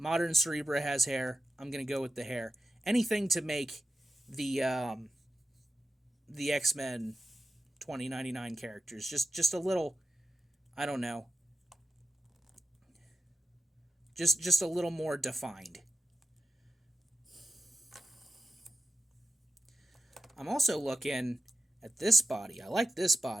Cerebra has hair. I'm gonna go with the hair. Anything to make the X-Men 2099 characters just a little, I don't know, just a little more defined. I'm also looking at this body. I like this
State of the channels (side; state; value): both; normal; correlation 0.91